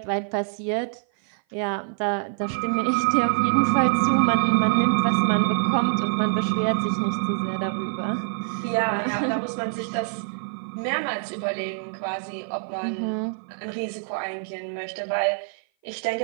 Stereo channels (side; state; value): left; silent; 56 dB below the other